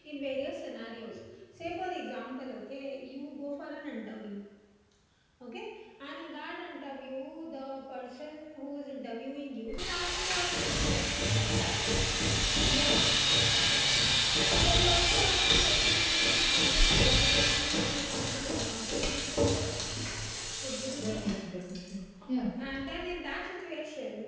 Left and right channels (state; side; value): identical; both; correlation 1.00